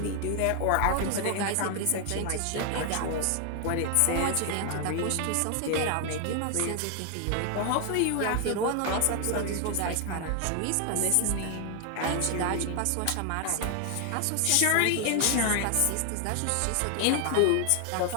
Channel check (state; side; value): different; both; correlation 0.00